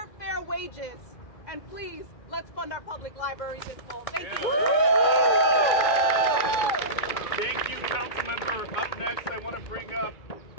fair wages, and please, let's fund our public libraries in full. Thank you. Thank you, council member. Up next, I want to bring up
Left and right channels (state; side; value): late; right; 2.5 ms